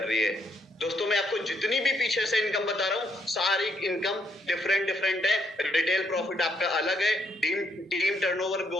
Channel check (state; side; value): normal; both; correlation 0.73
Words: रही है। दोस्तों मैं आपको जितनी भी पीछे से इनकम बता रहा हूं सारी इनकम डिफरेंट है। रिटेल प्रॉफिट आपका अलग है, टीम टर्नओवर